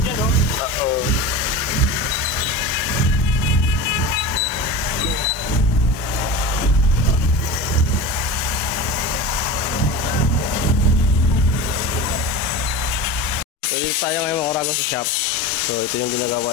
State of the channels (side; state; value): both; normal; correlation 0.29